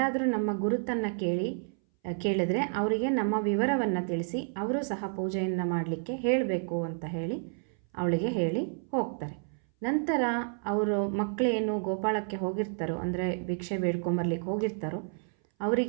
ನಮ್ಮ ಗುರುತನ್ನು ಕೇಳಿದ್ರೆ ಅವರಿಗೆ ನಮ್ಮ ವಿವರವನ್ನು ತಿಳಿಸಿ ಅವರು ಸಹ ಪೂಜೆಯನ್ನು ಮಾಡಲಿಕ್ಕೆ ಹೇಳಬೇಕು ಅಂತ ಹೇಳಿ ಅವಳಿಗೆ ಹೇಳಿ ಹೋಗ್ತಾರೆ. ನಂತರ ಅವರು ಮಕ್ಕಳೇನು ಗೋಪಾಳಕ್ಕೆ ಹೋಗಿರ್ತಾರೋ, ಅಂದರೆ ಭಿಕ್ಷೆ ಬೇಡ್ಕೊಂಬರ್ಲಿಕ್ಕೆ ಹೋಗಿರ್ತಾರೋ,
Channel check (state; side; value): silent; left; 58 dB below the other